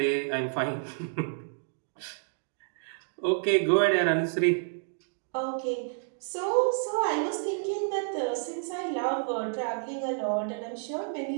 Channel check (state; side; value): silent; left; digital silence